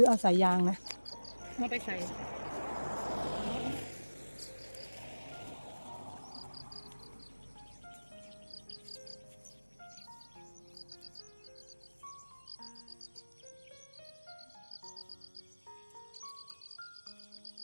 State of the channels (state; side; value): inverted; both; correlation -1.00